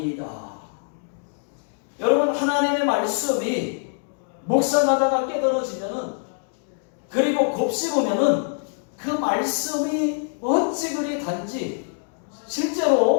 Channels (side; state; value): right; silent; digital silence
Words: 여러분, 하나님의 말씀이 묵상하다가 깨달아지면은, 그리고 곱씹으면은 그 말씀이 어찌 그리 단지